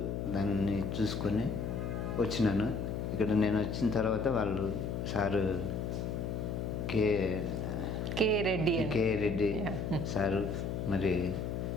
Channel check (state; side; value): noise; left; hum, 2 dB below the sound